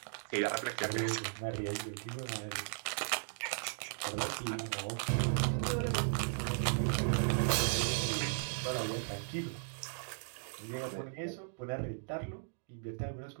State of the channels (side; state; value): left; silent; digital silence